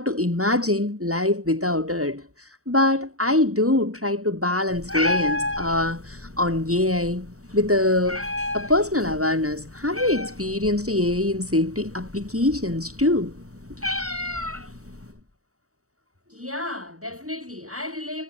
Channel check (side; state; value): left; late; 0.65 ms